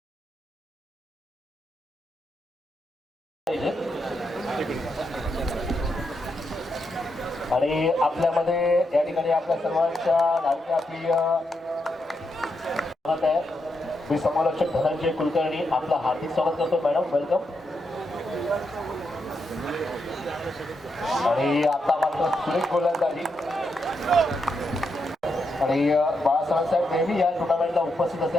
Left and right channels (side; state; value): both; normal; correlation 0.82